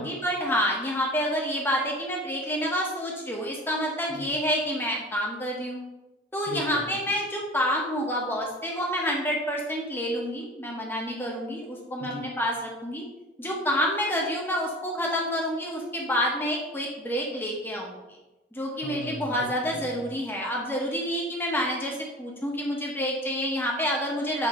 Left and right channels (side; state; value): both; normal; correlation 0.38